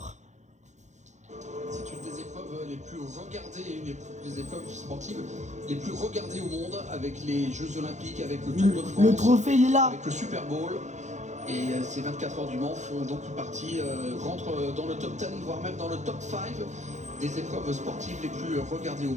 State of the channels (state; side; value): late; left; 0.34 ms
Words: C'est une des épreuves les plus regardées, une des épreuves sportives les plus regardées au monde, avec les Jeux Olympiques, avec le Tour de France, Le trophée, il est là. avec le Super Bowl. Et ces 24 heures du Mans font donc partie, rentrent dans le top 10, voire même dans le top 5 des épreuves sportives les plus regardées au